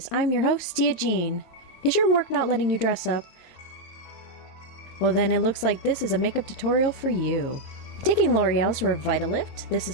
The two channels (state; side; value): late; right; 22 ms